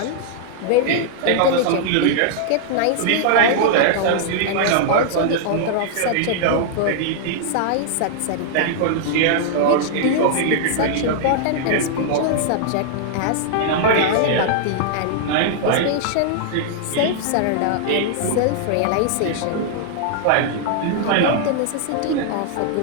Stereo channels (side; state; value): both; different; correlation -0.01